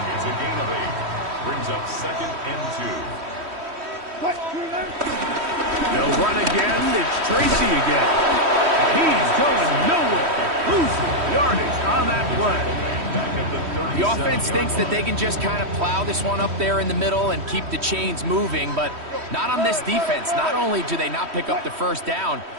a gain of 8. Brings up second and 2. They'll run again. It's Tracy again. He's going nowhere. Losing yardage on that play. The offense thinks that they can just kind of plow this one up there in the middle and keep the chains moving, but not on this defense. Not only do they not pick up the first down,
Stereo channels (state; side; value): late; left; 3.1 ms